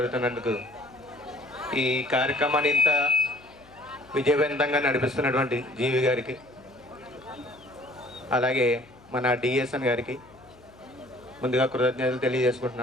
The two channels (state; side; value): noise; left; hum, 25 dB below the sound